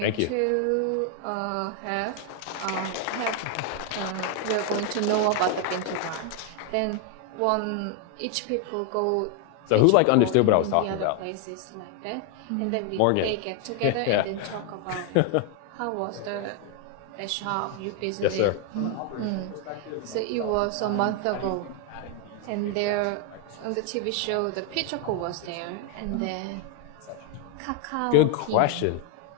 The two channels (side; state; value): both; different; correlation 0.01